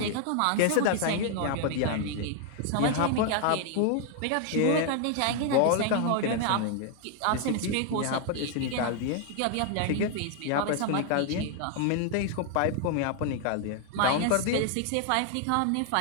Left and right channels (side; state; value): both; different; correlation 0.00